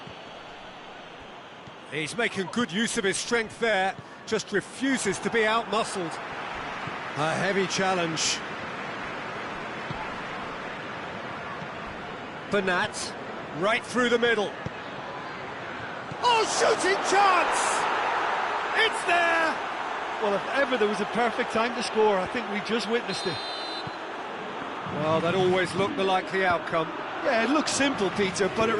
He's making good use of his strength there, just refuses to be out-muscled. A heavy challenge. Bernat, right through the middle. Oh, shooting chance! It's there! Well, if ever there was a perfect time to score, I think we just witnessed it. Well, that always looked the likely outcome. Yeah, it looks simple, Peter, but it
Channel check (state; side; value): identical; both; correlation 1.00